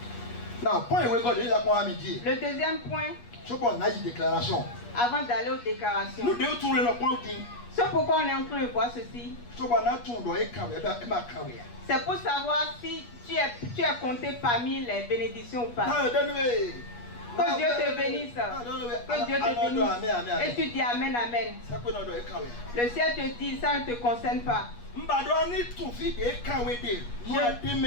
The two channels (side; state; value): right; late; 8.4 ms